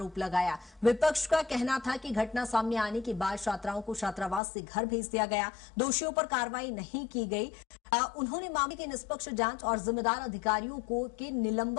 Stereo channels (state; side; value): drops out; right; at 4.4 s